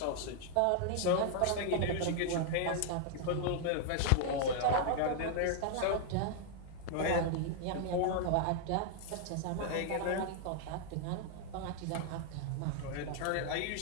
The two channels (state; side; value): different; both; correlation 0.00